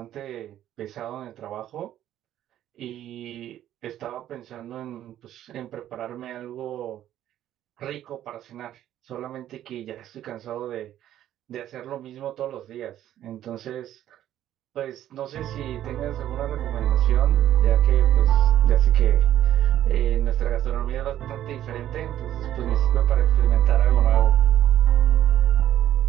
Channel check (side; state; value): left; quieter; 12.0 dB